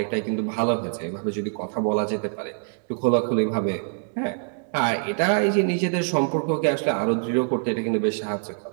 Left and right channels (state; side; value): silent; left; digital silence